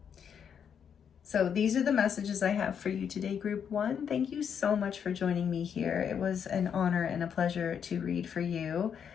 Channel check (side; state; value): right; quieter; 7.7 dB